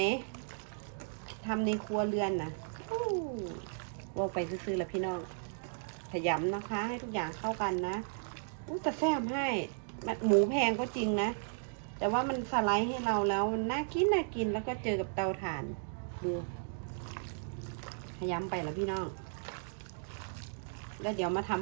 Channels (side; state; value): left; silent; digital silence